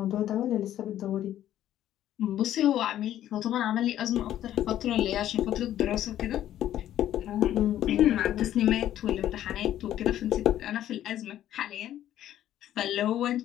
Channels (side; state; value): right; quieter; 12.1 dB